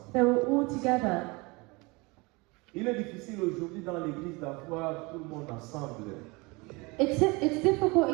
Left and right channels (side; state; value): left; quieter; 25.9 dB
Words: They were all together. Il est difficile aujourd'hui dans l'église d'avoir tout le monde ensemble. It's difficult